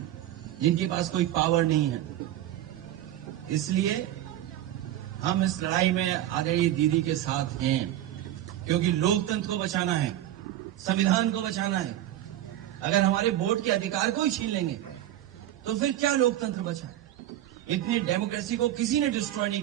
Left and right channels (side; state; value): left; quieter; 12.9 dB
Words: जिनके पास कोई पावर नहीं है। इसलिए हम इस लड़ाई में आदरणीय दीदी के साथ हैं, क्योंकि लोकतंत्र को बचाना है, संविधान को बचाना है। अगर हमारे वोट के अधिकार को ही छीन लेंगे तो फिर क्या लोकतंत्र बचा? इतनी डेमोक्रेसी को किसी ने डिस्ट्रॉय नहीं